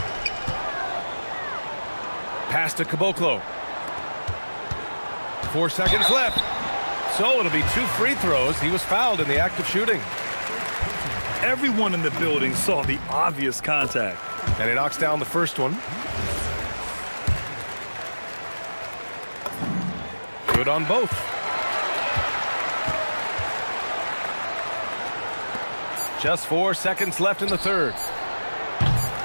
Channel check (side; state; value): both; inverted; correlation -1.00